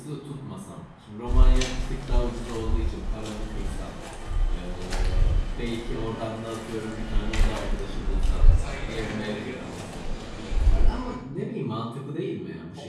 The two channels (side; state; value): both; identical; correlation 1.00